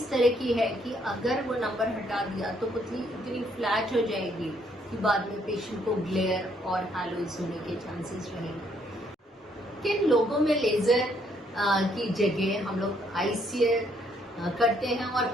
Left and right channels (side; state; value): both; normal; correlation 0.69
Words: तरह की है कि अगर वो नंबर हटा दिया तो पुतली इतनी फ्लैट हो जाएगी कि बाद में पेशेंट को ग्लेयर और हैलोज होने के चांसेस रहेंगे। किन लोगों में लेजर की जगह हम लोग आईसीएल करते हैं और